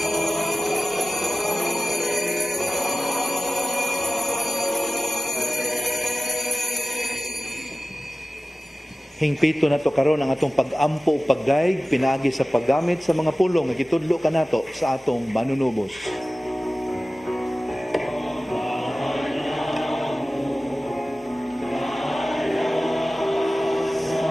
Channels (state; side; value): normal; both; correlation 0.96